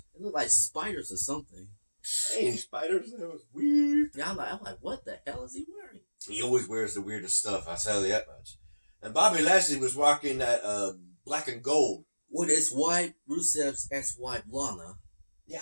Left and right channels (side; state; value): both; inverted; correlation -1.00